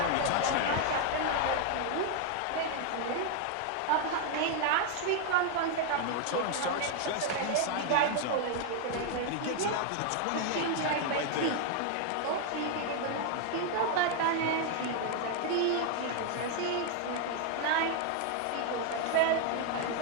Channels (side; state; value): both; different; correlation 0.00